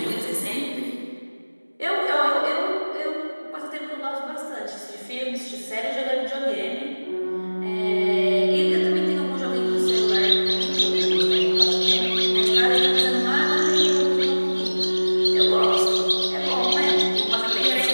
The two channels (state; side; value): inverted; both; correlation -1.00